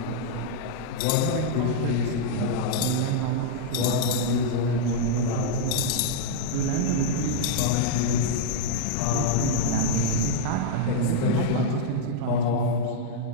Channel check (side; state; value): both; different; correlation -0.02